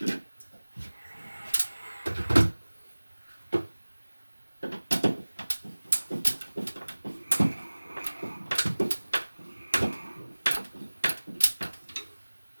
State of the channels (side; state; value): both; inverted; correlation -1.00